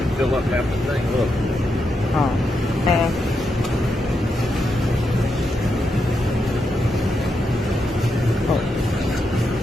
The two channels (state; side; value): normal; both; correlation 0.84